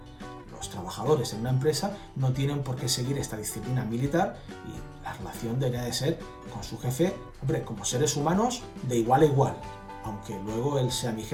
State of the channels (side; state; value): both; identical; correlation 1.00